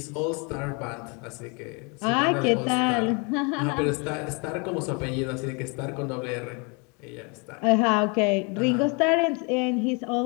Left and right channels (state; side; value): quieter; right; 32.4 dB